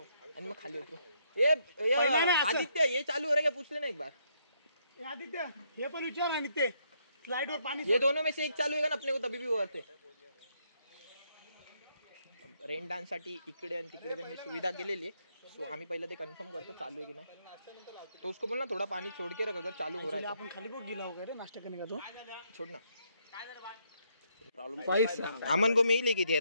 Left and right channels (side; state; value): both; inverted; correlation -0.74